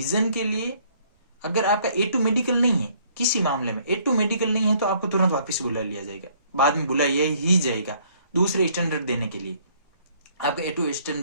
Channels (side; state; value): both; inverted; correlation -0.62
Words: के लिए, अगर आपका A2 मेडिकल नहीं है, किसी मामले में A2 मेडिकल नहीं है, तो आपको तुरंत वापस बुला लिया जाएगा, बाद में बुलाया ही जाएगा दूसरे स्टैंडर्ड देने के लिए। आपका A2